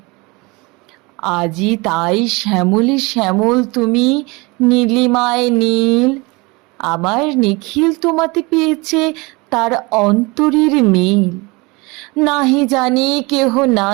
আজি তাই শ্যামলে শ্যামল তুমি, নীলিমায় নীল, আমার নিখিল তোমাতে পেয়েছে তার অন্তরের মিল। নাহি জানি কেহ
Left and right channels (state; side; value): quieter; left; 25.5 dB